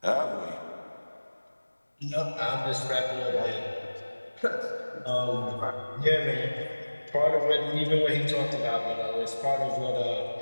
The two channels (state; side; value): inverted; both; correlation -1.00